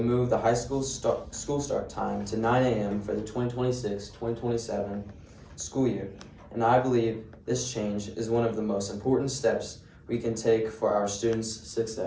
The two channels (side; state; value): both; identical; correlation 1.00